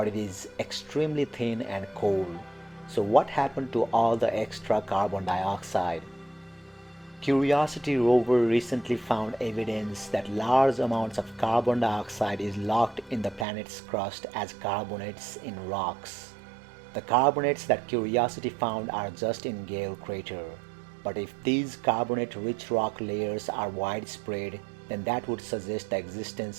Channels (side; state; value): left; drops out; at 13.5 s